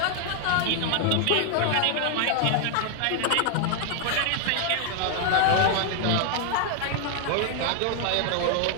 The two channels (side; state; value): both; different; correlation 0.00